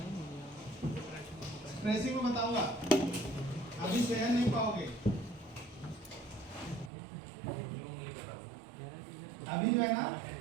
ट्रेसिंग में बताऊंगा, अभी सहन नहीं पाओगे। अभी जो है ना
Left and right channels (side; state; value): left; drops out; at 6.9 s